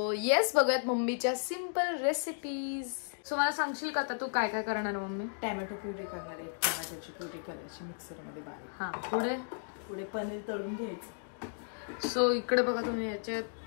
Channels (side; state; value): right; silent; digital silence